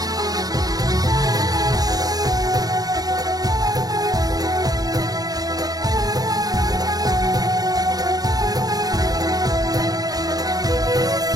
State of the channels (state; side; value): late; left; 0.18 ms